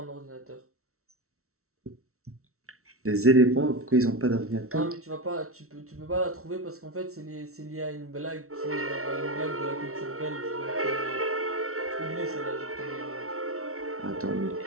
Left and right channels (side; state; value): left; late; 0.63 ms